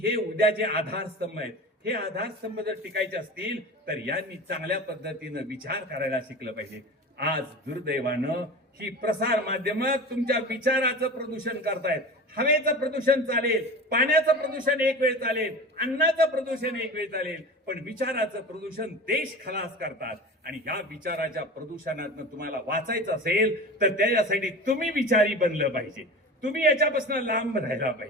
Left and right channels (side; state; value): both; normal; correlation 0.32